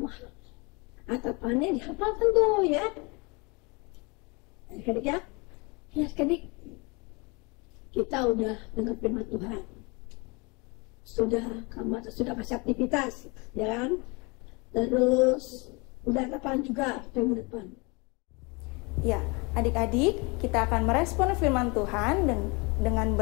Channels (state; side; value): quieter; right; 28.6 dB